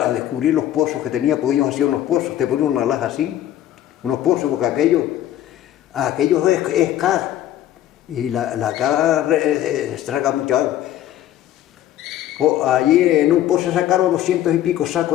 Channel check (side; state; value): right; quieter; 12.4 dB